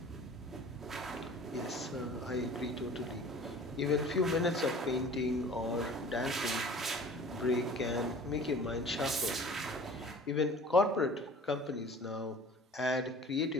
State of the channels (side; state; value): both; normal; correlation 0.45